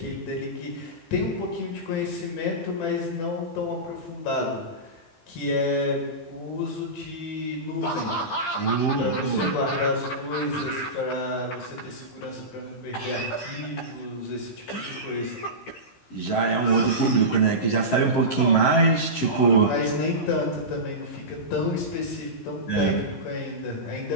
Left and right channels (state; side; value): late; right; 15 ms